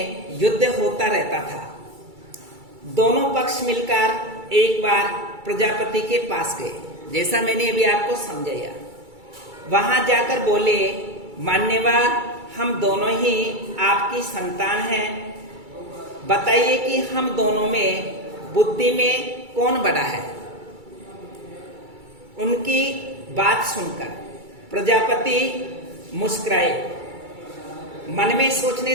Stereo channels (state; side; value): late; left; 2.3 ms